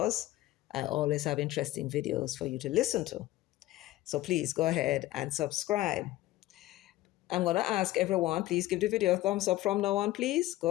I always have interesting videos for you to listen to. So please go ahead and subscribe. I'm going to ask everyone, please give the video a thumbs up from now on, please.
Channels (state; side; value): quieter; right; 16.4 dB